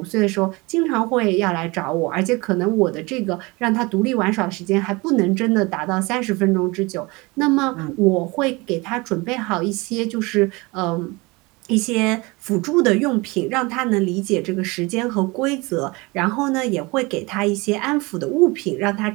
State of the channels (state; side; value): quieter; left; 24.8 dB